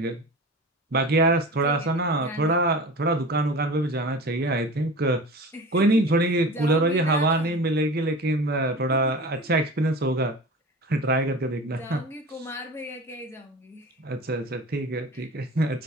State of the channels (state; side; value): normal; both; correlation 0.34